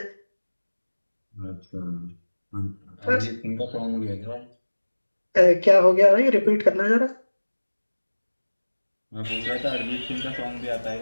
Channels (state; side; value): inverted; both; correlation -1.00